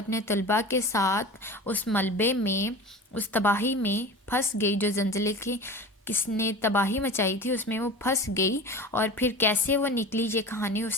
طلباء کے ساتھ اس ملبے میں، اس تباہی میں پھنس گئی۔ جو زلزلے کی کس نے تباہی مچائی تھی اس میں وہ پھنس گئی، اور پھر کیسے وہ نکلی، یہ کہانی اس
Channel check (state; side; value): normal; both; correlation 0.34